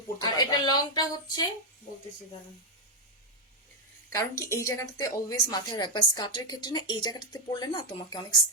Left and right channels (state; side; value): normal; both; correlation 0.02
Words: পড়তে আর পারবে। এটা লংটা হচ্ছে বলতেছি দাঁড়ান। কারণ কি এই জায়গাটাতে অলওয়েজ মাথায় রাখবা, স্কার্টের ক্ষেত্রে না এই জায়গাটাতে পড়লে না তোমাকে অনেক